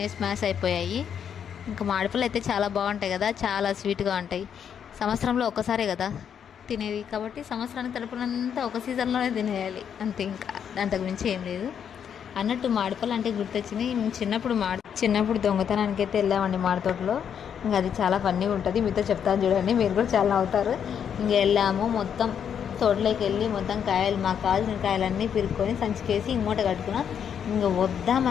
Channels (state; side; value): quieter; right; 8.1 dB